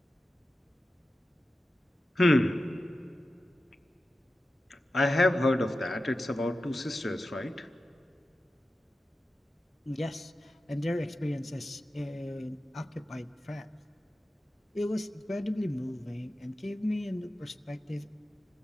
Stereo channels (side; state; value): both; normal; correlation 0.93